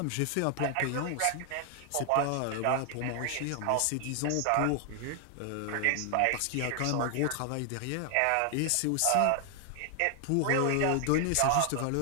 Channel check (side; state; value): both; different; correlation 0.00